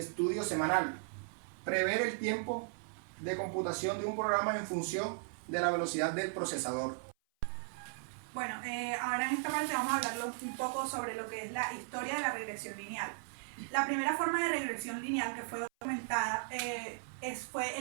estudio semanal. Prever el tiempo de computación de un programa en función de la velocidad del procesador. Bueno, ahora en esta parte vamos a hablar un poco sobre lo que es la historia de la regresión lineal. La primera forma de regresión lineal que fue documentada fue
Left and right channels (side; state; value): left; silent; 53 dB below the other